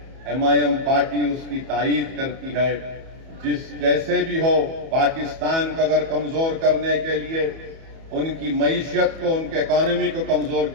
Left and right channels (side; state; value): left; late; 31 ms